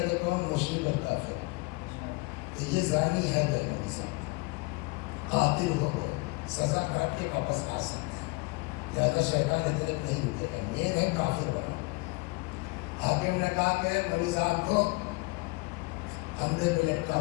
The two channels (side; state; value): right; quieter; 26.2 dB